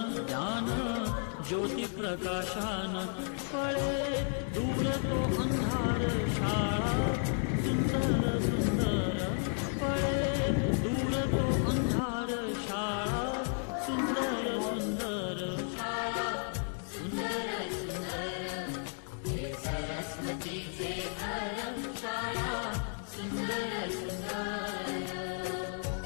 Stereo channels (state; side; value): silent; right; 56 dB below the other